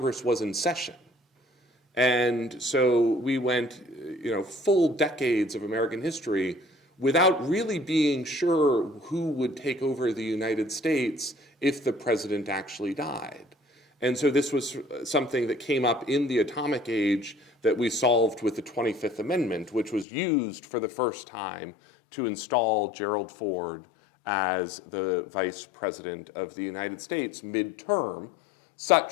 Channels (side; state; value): right; drops out; at 20.1 s